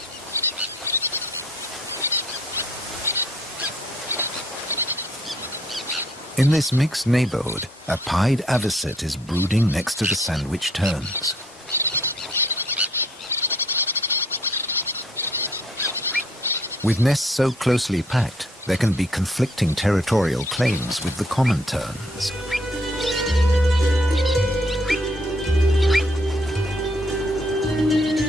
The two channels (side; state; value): both; normal; correlation 0.65